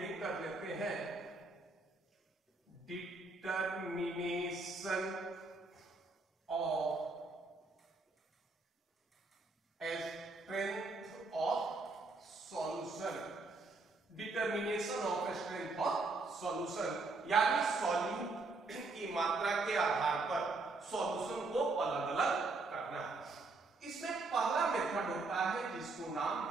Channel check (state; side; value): quieter; left; 3.6 dB